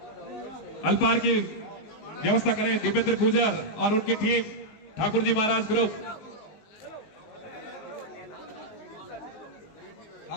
अल्पार की व्यवस्था करें। दीपेंद्र गुजर और उनकी टीम, ठाकुर जी महाराज ग्रुप,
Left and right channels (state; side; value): late; right; 19 ms